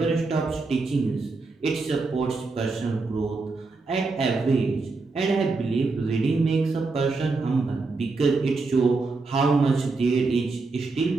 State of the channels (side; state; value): left; quieter; 3.8 dB